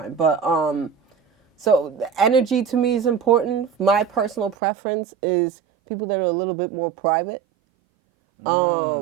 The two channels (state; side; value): drops out; left; at 4.5 s